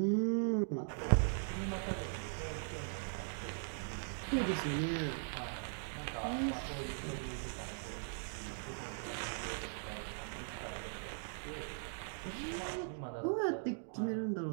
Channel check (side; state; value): left; silent; digital silence